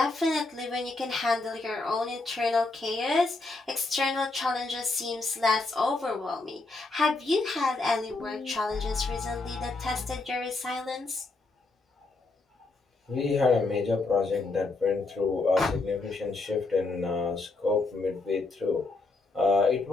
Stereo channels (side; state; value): right; quieter; 3.5 dB